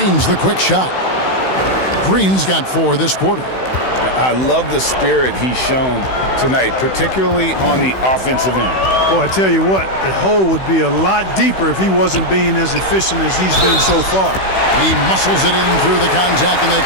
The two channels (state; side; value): late; right; 16 ms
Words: the quick shot. Green's got 4 this quarter. I love the spirit he's shown tonight, particularly on the offensive end. Boy, I tell you what, the hole would be a lot deeper if he wasn't being as efficient as he's been so far. He muscles it in through the contact, and they